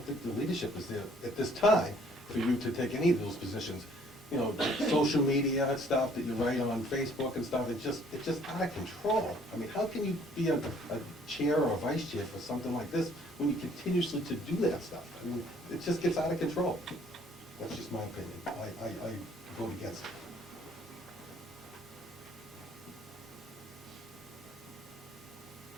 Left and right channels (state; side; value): normal; both; correlation 0.60